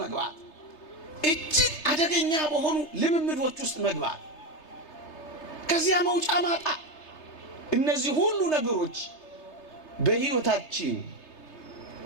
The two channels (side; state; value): right; late; 3.3 ms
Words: መግባት፣ እጅግ አደገኛ በሆኑ ልምምዶች ውስጥ መግባት፣ ከዚያ መውጫ ማጣ። እነዚህ ሁሉ ነገሮች በሕይወታችን